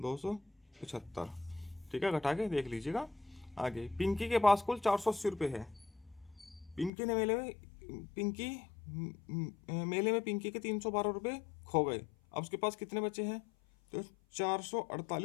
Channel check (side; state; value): right; drops out; at 6.9 s